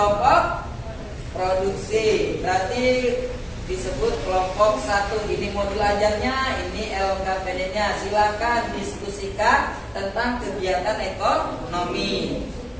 produksi berarti disebut kelompok 1. Ini modul ajarnya, ini LKPD-nya. Silakan diskusikan tentang kegiatan ekonomi.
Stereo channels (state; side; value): identical; both; correlation 1.00